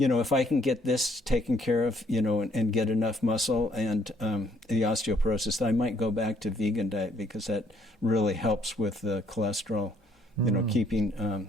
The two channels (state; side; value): normal; both; correlation 0.67